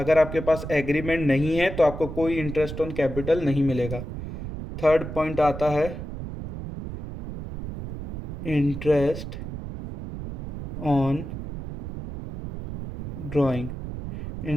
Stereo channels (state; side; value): noise; right; rumble, 8 dB below the sound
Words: आपके पास एग्रीमेंट नहीं है तो आपको कोई इंटरेस्ट ऑन कैपिटल नहीं मिलेगा। थर्ड पॉइंट आता है interest on drawing.